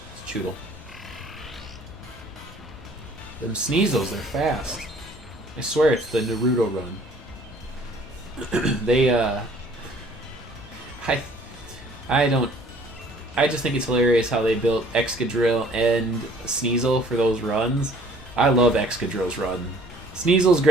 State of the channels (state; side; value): normal; both; correlation 0.56